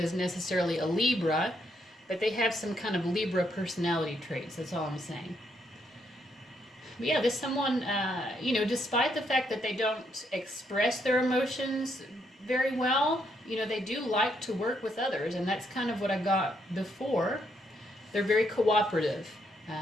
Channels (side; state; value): both; normal; correlation 0.75